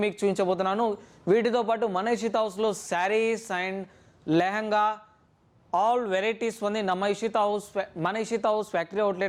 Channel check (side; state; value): both; identical; correlation 1.00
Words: మీకు చూపించబోతున్నాను. వీటితో పాటు మన ఇషిత హౌస్లో saris and lehenga all varieties ఉంది మన ఇషిత హౌస్ ఫ్యాక్టరీ